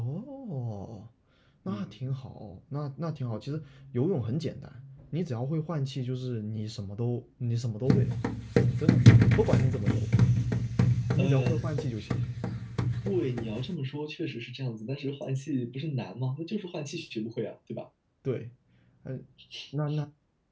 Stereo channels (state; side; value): identical; both; correlation 1.00